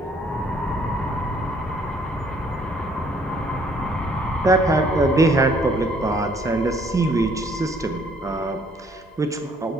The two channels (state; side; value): normal; both; correlation 0.62